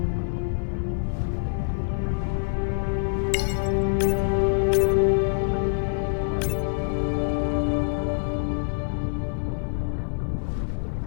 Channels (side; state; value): right; silent; 61 dB below the other